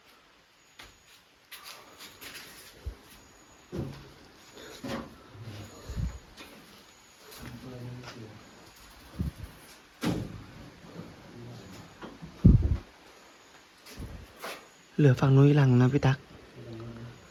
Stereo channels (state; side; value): identical; both; correlation 1.00